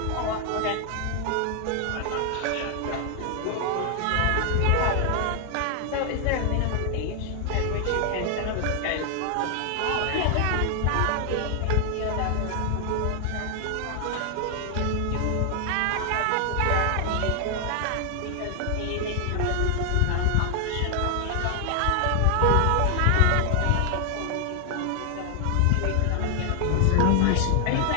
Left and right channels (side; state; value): both; different; correlation 0.00